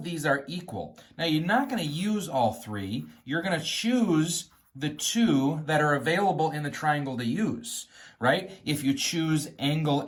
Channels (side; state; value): both; identical; correlation 1.00